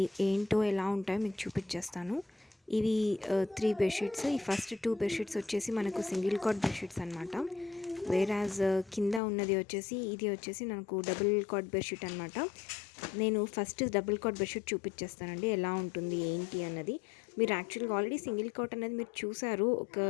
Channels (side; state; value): right; drops out; at 9.2 s